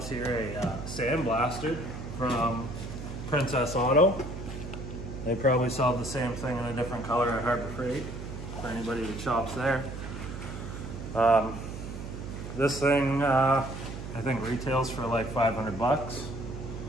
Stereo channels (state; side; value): noise; right; hum, 9 dB below the sound